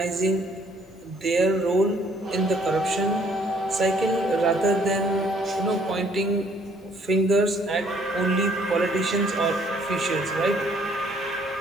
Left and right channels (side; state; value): both; normal; correlation 0.63